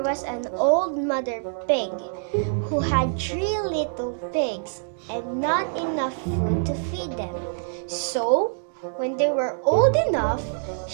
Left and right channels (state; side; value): silent; left; digital silence